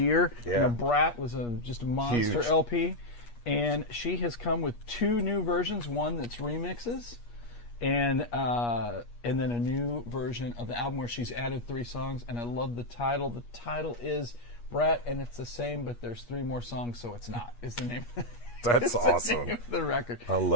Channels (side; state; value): right; late; 8.4 ms